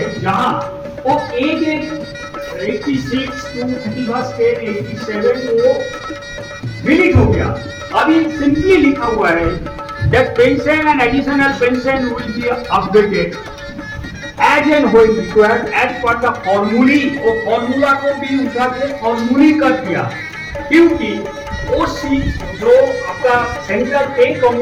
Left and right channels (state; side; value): identical; both; correlation 1.00